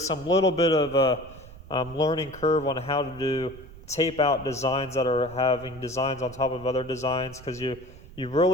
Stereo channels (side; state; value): right; noise; rumble, 18 dB below the sound